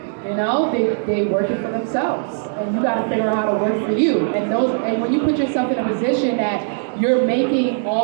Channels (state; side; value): silent; left; digital silence